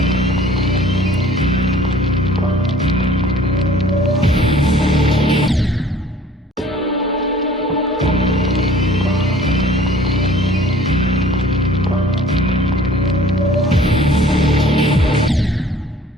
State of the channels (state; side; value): normal; both; correlation 0.51